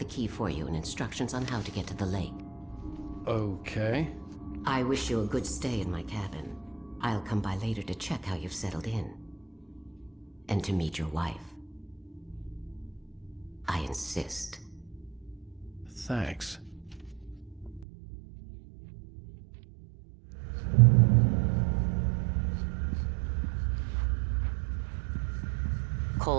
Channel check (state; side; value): drops out; left; at 17.9 s